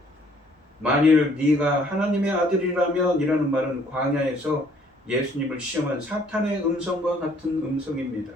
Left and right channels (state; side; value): normal; both; correlation 0.61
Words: 만일 네가 하나님의 아들이라면 이라는 말은 광야에서 예수님을 시험한 사탄의 음성과 같은 음성입니다.